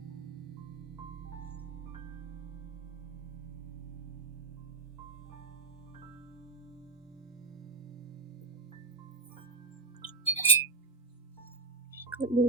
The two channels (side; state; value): left; quieter; 3.4 dB